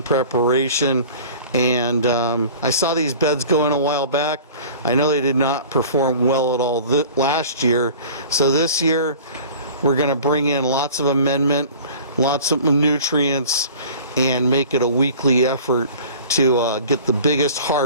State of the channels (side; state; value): both; inverted; correlation -0.43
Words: preparation. And I saw these beds going a while back. I know they did not perform well at all last year, so this year we're going to bring in lots of amendment, lots of nutrients, and make it a weekly effort to get the biggest